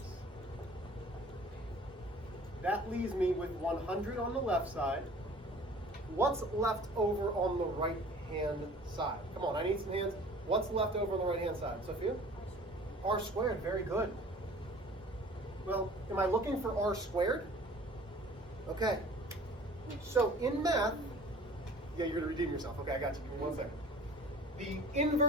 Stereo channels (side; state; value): both; normal; correlation 0.47